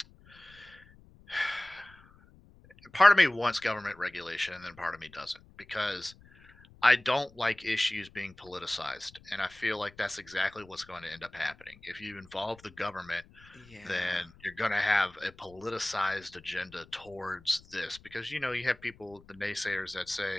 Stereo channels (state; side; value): noise; left; rumble, 25 dB below the sound